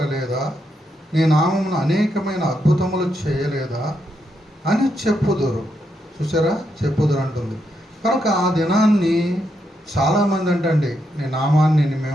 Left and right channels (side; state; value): both; normal; correlation 0.81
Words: నీ నామమును అనేకమైన అద్భుతములు చేయలేదా అని చెప్పుదురు. చూసారా, చెప్పుదురు అంటుంది. కనుక ఆ దినాన్ని చాలామంది అంటండి, నీ నామాన్ని